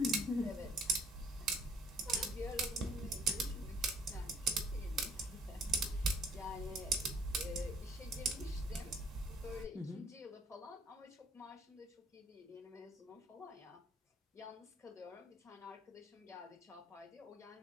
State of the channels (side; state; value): both; normal; correlation 0.61